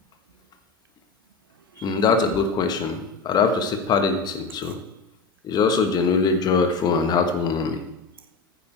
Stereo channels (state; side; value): quieter; right; 4.4 dB